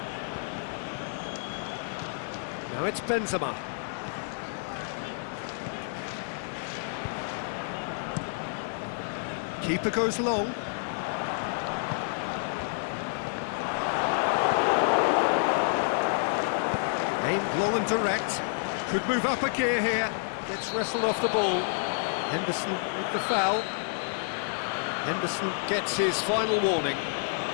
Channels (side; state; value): right; silent; digital silence